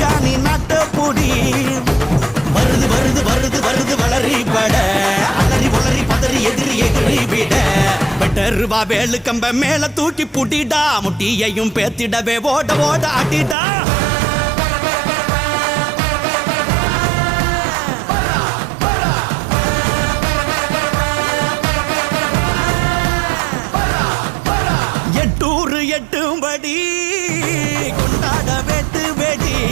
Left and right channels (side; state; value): left; drops out; at 13.6 s